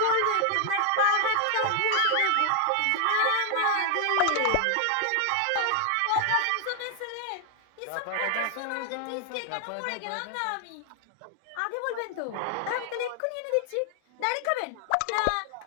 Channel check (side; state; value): both; different; correlation 0.00